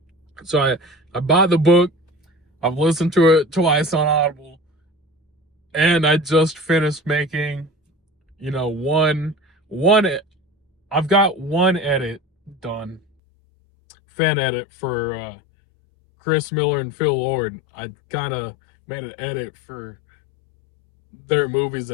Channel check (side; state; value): right; drops out; at 13.0 s